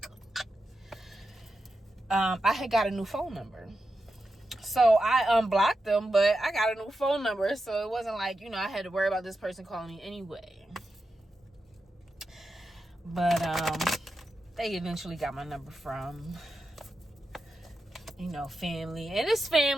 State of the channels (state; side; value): normal; both; correlation 0.89